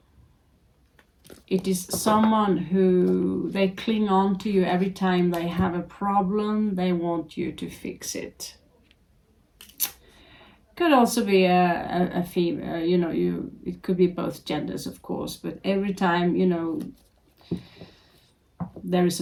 it is someone who they cling on to you every time they have a problem. They want you to fix it. Could also be a female, it could be both genders, of course, but every time, there is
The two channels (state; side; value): identical; both; correlation 1.00